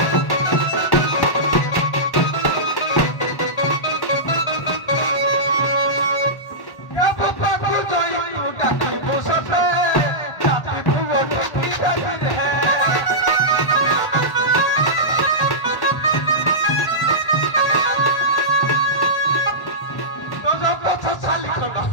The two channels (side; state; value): right; late; 1.1 ms